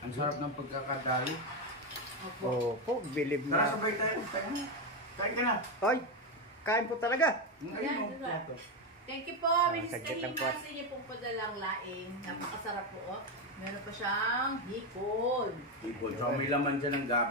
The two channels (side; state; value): both; normal; correlation 0.09